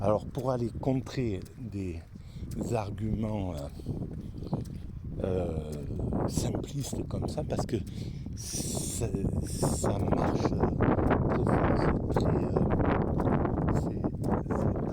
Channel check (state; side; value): identical; both; correlation 1.00